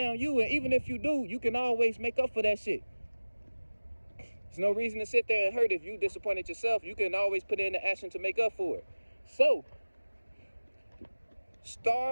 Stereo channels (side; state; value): both; inverted; correlation -1.00